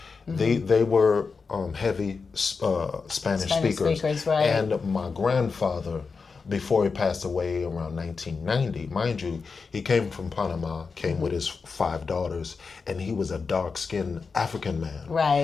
they were heavy Spanish speakers, and my grandfather, before he passed away around 1990, mind you, he came from Panama, came with his 5 daughters, and he was a dark-skinned African man,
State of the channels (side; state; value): right; quieter; 4.9 dB